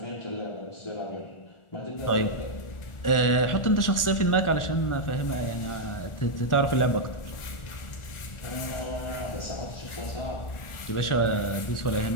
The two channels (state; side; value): late; right; 1.4 ms